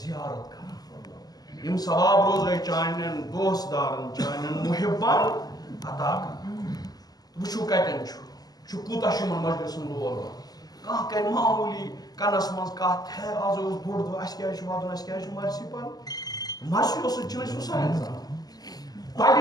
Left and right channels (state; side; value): late; right; 0.19 ms